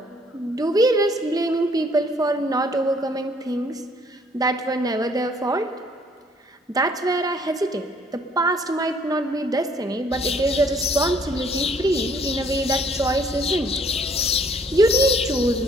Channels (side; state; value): both; normal; correlation 0.62